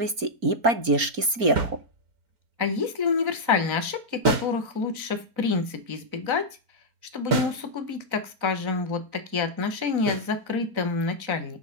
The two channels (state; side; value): late; left; 4.4 ms